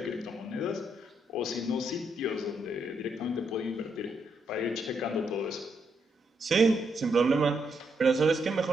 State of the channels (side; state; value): both; normal; correlation 0.78